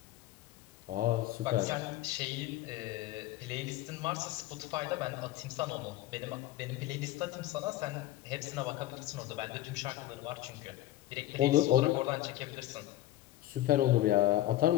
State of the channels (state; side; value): quieter; right; 14.6 dB